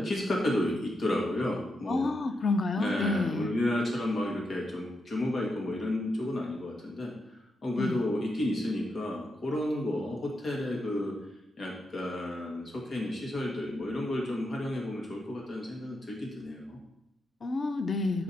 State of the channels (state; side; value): normal; both; correlation 0.84